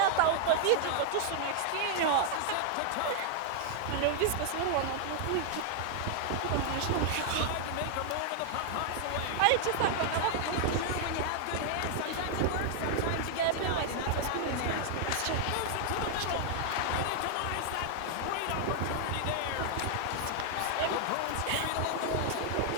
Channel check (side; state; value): both; different; correlation 0.00